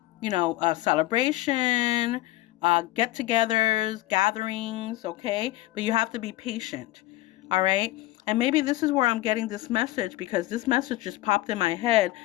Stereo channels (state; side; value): quieter; right; 17.4 dB